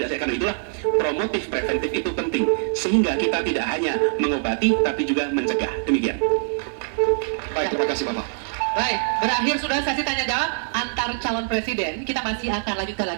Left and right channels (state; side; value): silent; left; digital silence